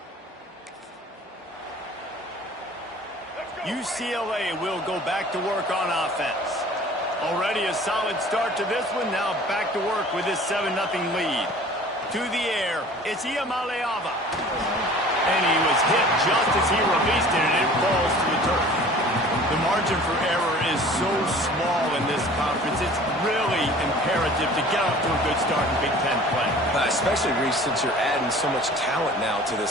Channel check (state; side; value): normal; both; correlation 0.46